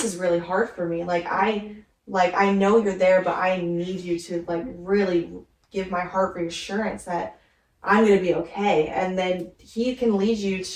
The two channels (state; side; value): identical; both; correlation 1.00